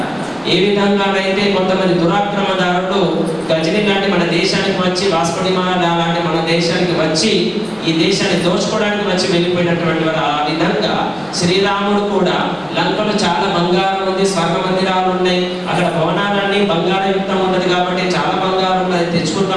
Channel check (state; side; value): identical; both; correlation 1.00